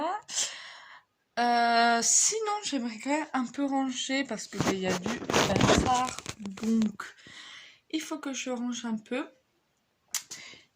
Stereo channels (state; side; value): identical; both; correlation 1.00